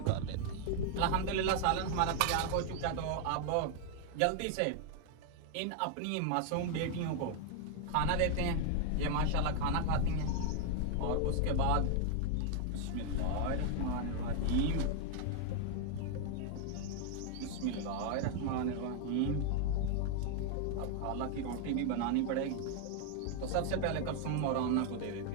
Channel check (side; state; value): both; different; correlation 0.00